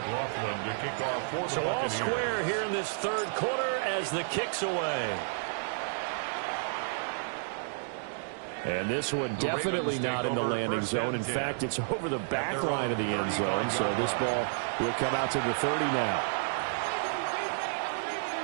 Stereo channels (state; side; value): silent; left; digital silence